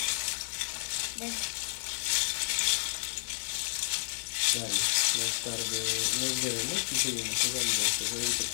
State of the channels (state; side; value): silent; right; 57 dB below the other